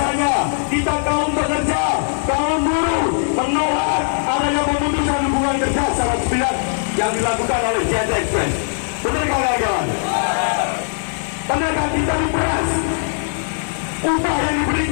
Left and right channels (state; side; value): silent; right; digital silence